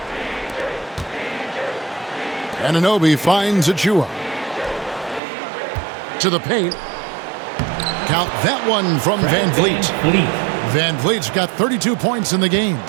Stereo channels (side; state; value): left; drops out; at 5.2 s